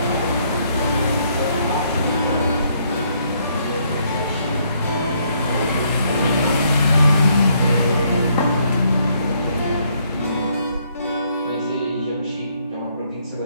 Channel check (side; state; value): both; inverted; correlation -0.70